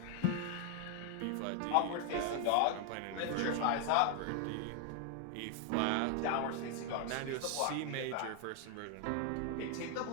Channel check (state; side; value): different; both; correlation 0.00